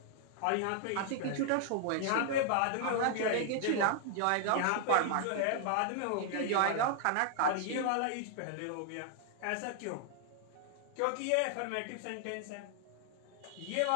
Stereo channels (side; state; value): both; different; correlation 0.00